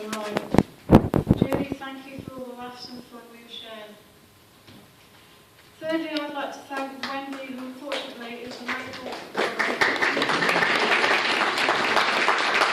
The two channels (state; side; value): identical; both; correlation 1.00